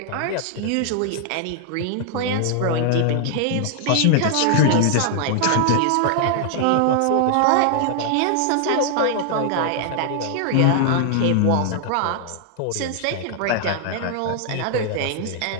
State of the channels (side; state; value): both; different; correlation 0.00